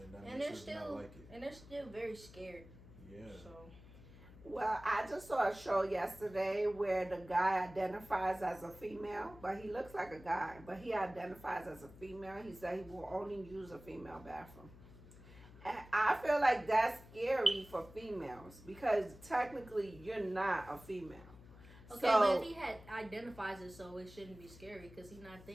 and that makes us not like it. And they're still very scared. Yeah. So. Well, I just saw a show yesterday where the guy identifies as a female, but he looks like a guy, but he identifies as a female. He said he will only use a female bathroom. And I feel like that's scary for females because technically you're not a female. Okay, but if he identifies it, so it shouldn't be scary because he's not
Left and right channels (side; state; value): left; noise; hum, 19 dB below the sound